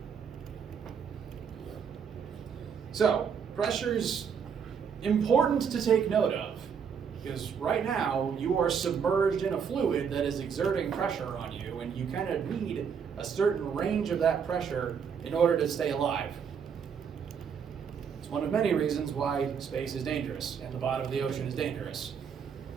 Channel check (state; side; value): quieter; left; 6.9 dB